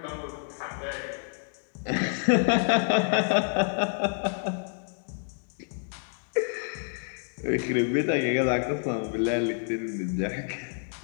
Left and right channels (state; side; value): silent; right; 59 dB below the other